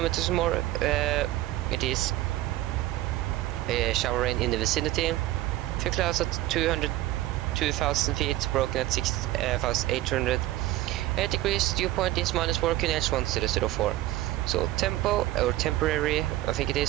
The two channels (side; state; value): left; quieter; 16.0 dB